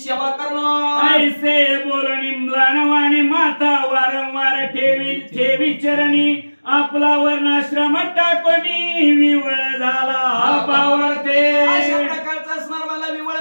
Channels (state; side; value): inverted; both; correlation -1.00